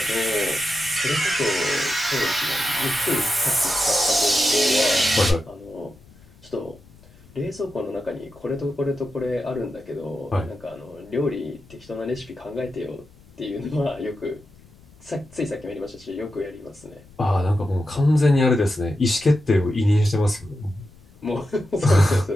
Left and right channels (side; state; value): left; noise; rumble, 25 dB below the sound